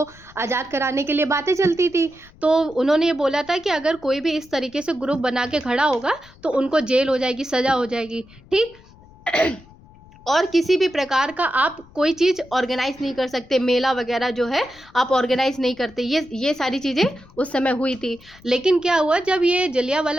आज़ाद कराने के लिए बातें चलती थी। तो उन्होंने ये बोला था कि अगर कोई भी इस तरीके से ग्रुप बना के खड़ा होगा तो उनको जेल हो जाएगी, सज़ा हो जाएगी, ठीक। और किसी भी प्रकार का आप कोई चीज़ ऑर्गेनाइज नहीं कर सकते, मेला वगैरह जो है आप ऑर्गेनाइज नहीं करते। ये सारी चीज़ें उस समय हुई थी। लेकिन क्या हुआ, जब ये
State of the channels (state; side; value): noise; left; rumble, 24 dB below the sound